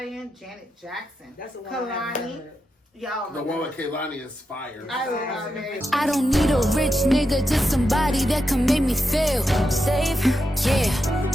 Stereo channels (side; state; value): both; normal; correlation 0.87